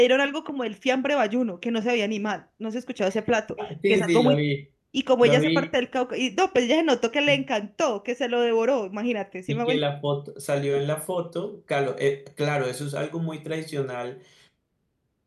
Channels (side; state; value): both; identical; correlation 1.00